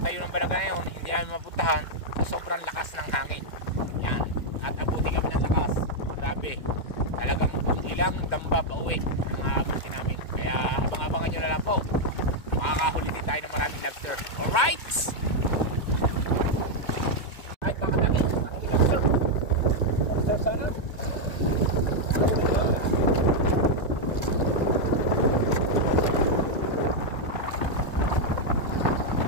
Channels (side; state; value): right; late; 2.2 ms